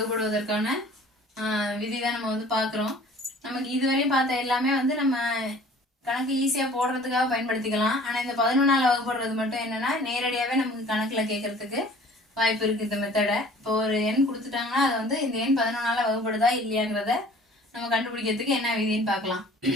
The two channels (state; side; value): normal; both; correlation 0.50